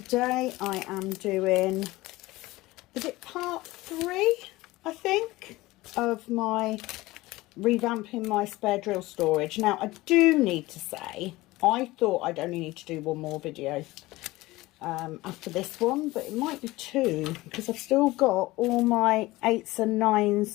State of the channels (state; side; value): quieter; right; 19.3 dB